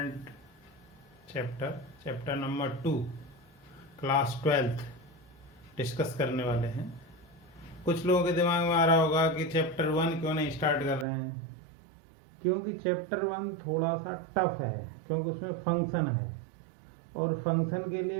chapter number 2 class 12th discuss करने वाले हैं। कुछ लोगों के दिमाग में आ रहा होगा कि चैप्टर 1 क्यों नहीं स्टार्ट कर रहे हैं, क्योंकि चैप्टर 1 थोड़ा सा टफ है, क्योंकि उसमें फंक्शन है और फंक्शन के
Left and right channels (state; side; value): drops out; left; at 11.1 s